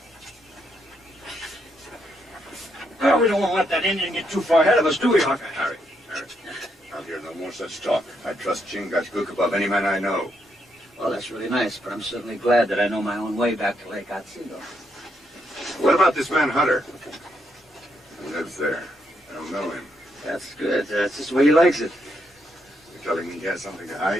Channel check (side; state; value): both; normal; correlation 0.78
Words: Well, we don't want to let that Indian get too far ahead of us, do we, Hawkeye? Harry, I'll hear no more such talk. I trust Chingachgook above any man I know. Well, that's really nice, but I'm certainly glad that I know my own way back to Lake Otsego. What about this man Hunter? He lives there. I don't know him. That's good. That's just the way he likes it. You're telling me he has something to